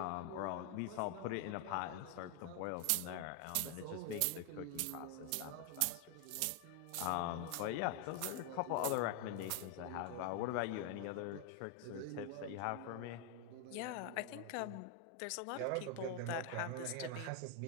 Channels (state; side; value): different; both; correlation 0.01